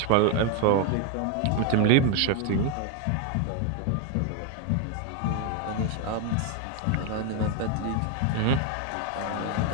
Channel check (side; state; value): both; different; correlation 0.01